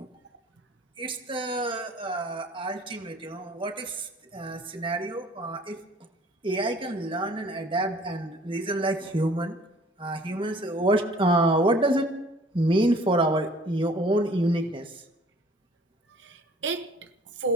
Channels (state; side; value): normal; both; correlation 0.53